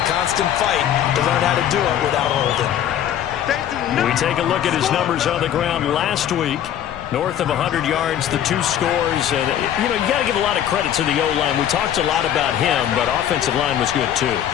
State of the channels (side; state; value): right; quieter; 10.4 dB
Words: constant fight to learn how to do it without holding. We take a look at his numbers on the ground last week. North of 100 yards, the 2 scores. And, you got to give a lot of credit to the O-line. We talked a lot about him, but offensive line was good, too.